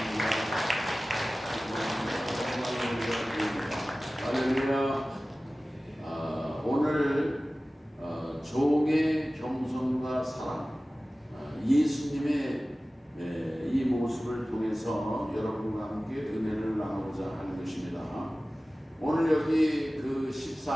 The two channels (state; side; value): normal; both; correlation 0.97